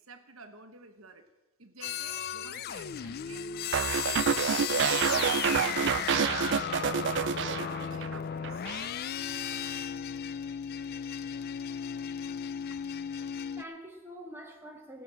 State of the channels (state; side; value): normal; both; correlation -0.01